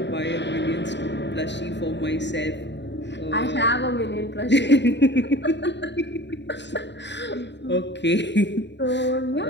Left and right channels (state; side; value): late; right; 0.52 ms